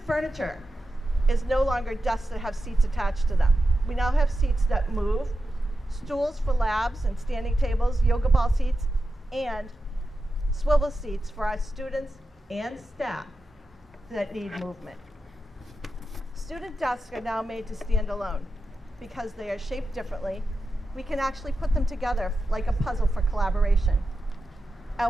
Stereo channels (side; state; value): both; normal; correlation 0.91